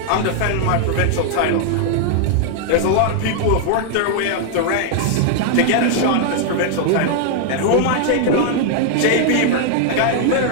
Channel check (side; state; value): both; different; correlation 0.00